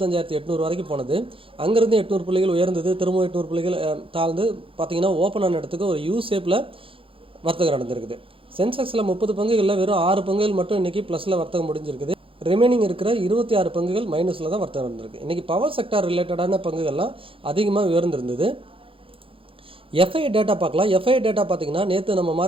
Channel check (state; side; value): late; left; 0.26 ms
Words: வரைக்கும் போனது. அங்கேருந்து 800 புள்ளிகள் உயர்ந்தது, திரும்பவும் 800 புள்ளிகள் தாழ்ந்து பார்த்தீங்கன்னா ஓப்பன் ஆன இடத்துக்கு ஒரு யூ ஷேப்பில் வர்த்தகம் நடந்திருக்குது. சென்செக்ஸில் 30 பங்குகளில் வெறும் 6 பங்குகள் மட்டும் இன்றைக்கி ப்ளஸில் வர்த்தகம் முடிஞ்சிருக்குது. ரிமைனிங் இருக்கிற 26 பங்குகள் மைனஸில் தான் வர்த்தகம் நடந்திருக்கு. இன்றைக்கி பவர் செக்டார் ரிலேட்டடான பங்குகள்லாம் அதிகமாக உயர்ந்திருந்தது. எஃப்ஐ டேட்டா பார்க்கலாம். எஃப்ஐ டேட்டா பார்த்தீங்கன்னா நேற்று நம்ம